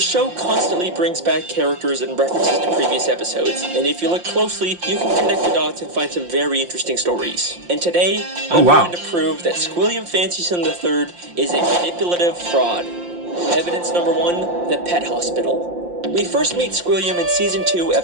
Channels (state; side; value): late; left; 5.7 ms